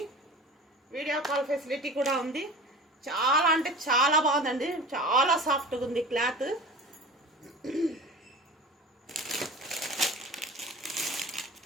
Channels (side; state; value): both; normal; correlation 0.38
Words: వీడియో కాల్ ఫెసిలిటీ కూడా ఉంది. చాలా అంటే చాలా బాగుందండి. చాలా సాఫ్ట్గా ఉంది క్లాత్.